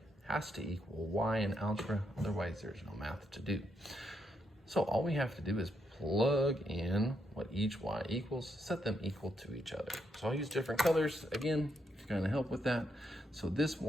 has to equal y in algebra, otherwise there's no math to do. So all we have to do is plug in what each y equals, set them equal to each other. So I'll use different colors, again, to kind of help with that. So this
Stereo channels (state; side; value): normal; both; correlation 0.79